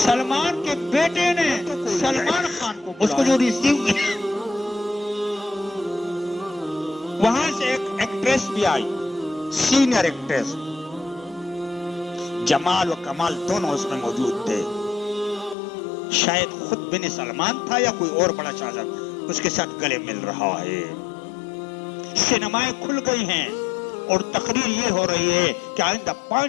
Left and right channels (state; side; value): drops out; right; at 15.6 s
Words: کے بیٹے نے سلمان خان کو, اس کو جو ریسیو کیا, وہاں سے ایک ایکٹریس بھی آئی, سینئر ایکٹریس, جمال و کمال دونوں اس میں موجود تھے. شاید خود بن سلمان تھا یا کوئی اور بڑا شاہزادہ اس کے ساتھ گلے مل رہا ہے. سینمائیں کھل گئی ہیں اور تقریر یہ ہو رہی ہے کہ آئندہ